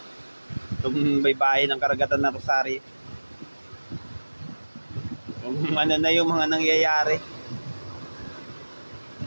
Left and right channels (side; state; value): both; inverted; correlation -1.00